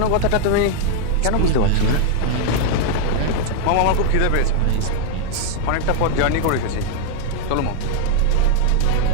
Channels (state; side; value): different; both; correlation 0.00